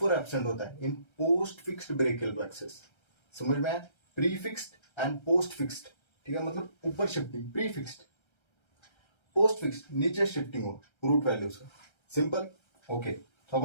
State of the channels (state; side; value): late; right; 1.3 ms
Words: एब्सेंट होता है इन पोस्ट फिक्स्ड ब्रेकियल प्लेक्सिस। समझ में आया? Pre fixed and post fixed. ठीक है, मतलब ऊपर shifting pre fixed, post fixed नीचे शिफ्टिंग हो रूट वैल्यूज का। सिंपल। ओके, तो